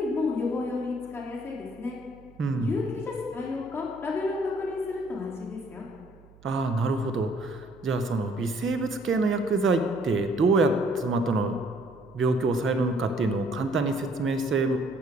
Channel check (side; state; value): right; noise; hum, 25 dB below the sound